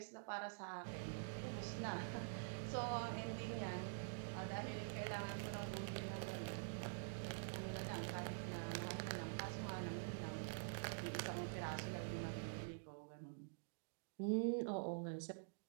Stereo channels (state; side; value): silent; left; digital silence